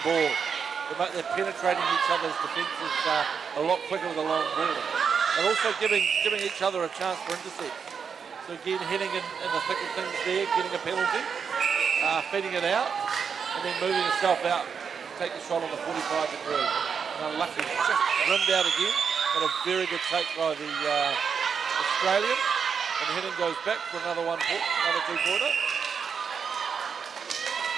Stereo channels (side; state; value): left; quieter; 6.4 dB